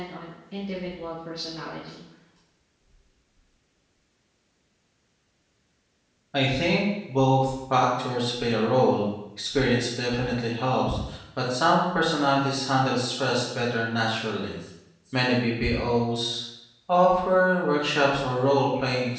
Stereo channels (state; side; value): identical; both; correlation 1.00